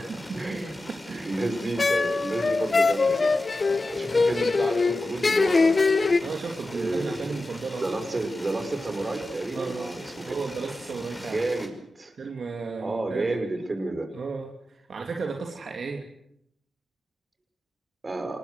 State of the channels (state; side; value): normal; both; correlation 0.92